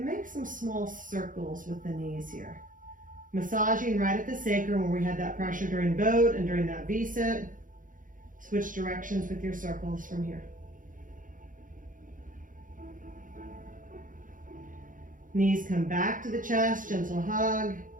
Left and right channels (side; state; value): left; late; 0.39 ms